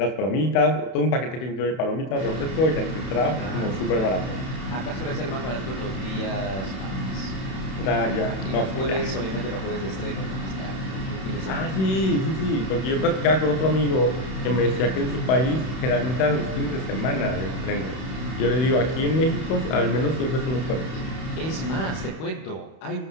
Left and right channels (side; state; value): right; late; 31 ms